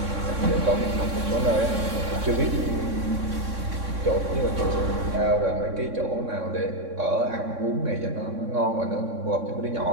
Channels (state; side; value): late; left; 3.6 ms